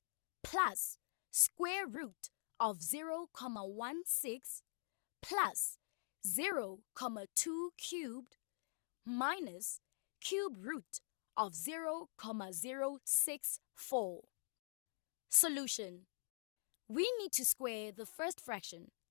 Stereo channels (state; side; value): silent; right; digital silence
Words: plus square root of 0,16 plus 0,2 cubed minus cube root of 0,064. Solution. We need to square the first fraction,